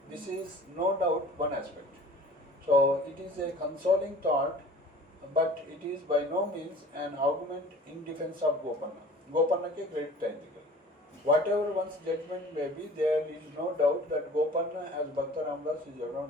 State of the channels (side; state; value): both; normal; correlation 0.45